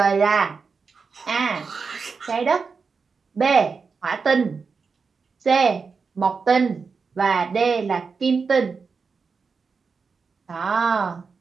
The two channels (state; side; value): quieter; left; 5.1 dB